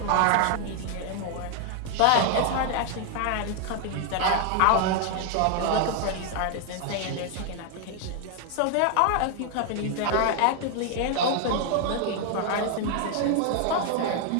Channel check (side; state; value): both; different; correlation 0.00